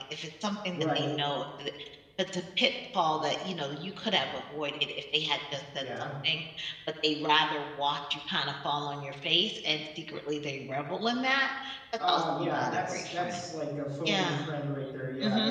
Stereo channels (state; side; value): identical; both; correlation 1.00